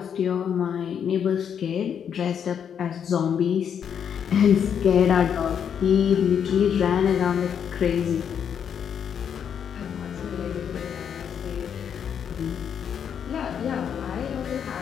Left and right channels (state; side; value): quieter; right; 8.0 dB